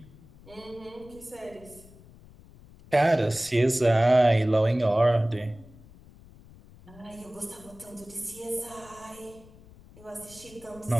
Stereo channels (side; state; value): left; noise; rumble, 22 dB below the sound